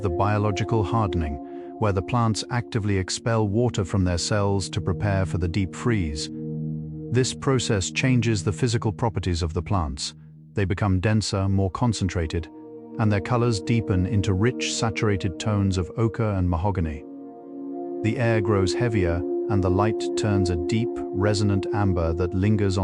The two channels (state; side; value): identical; both; correlation 1.00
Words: biological hardening, where the plants actively expel water from their cells to prepare for the deep freeze. This process changes the physical properties of the plants. They become denser, more concentrated, and their colors deepen into rich, saturated tones of ochre and mahogany. The air grows heavier, and the light turns a deep, resonant amber that lingers